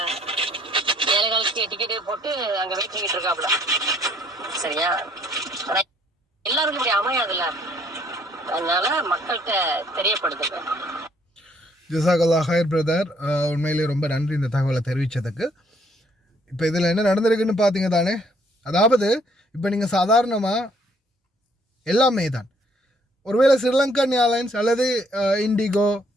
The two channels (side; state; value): both; normal; correlation 0.65